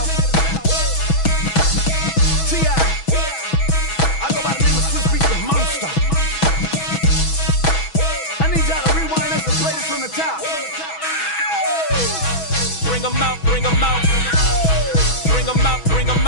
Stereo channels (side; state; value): right; late; 6.2 ms